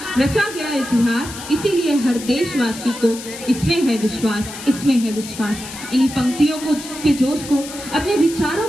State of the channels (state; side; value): noise; left; hiss, 12 dB below the sound